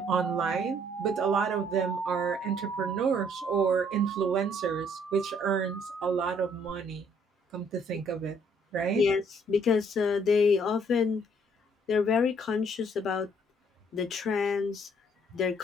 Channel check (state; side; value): normal; both; correlation 0.64